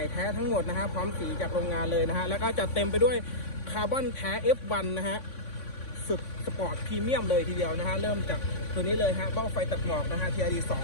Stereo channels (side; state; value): right; late; 3.5 ms